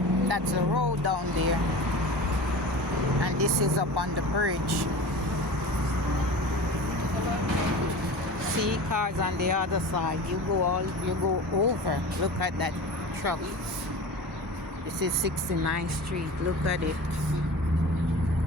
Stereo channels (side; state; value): both; normal; correlation 0.34